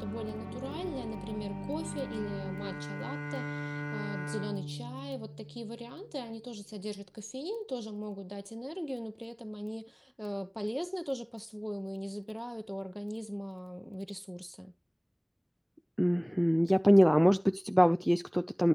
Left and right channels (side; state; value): both; identical; correlation 1.00